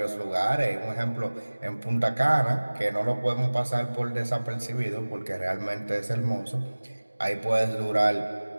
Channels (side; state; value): both; inverted; correlation -1.00